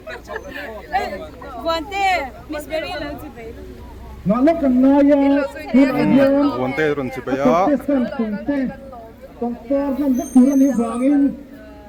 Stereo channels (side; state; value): both; identical; correlation 1.00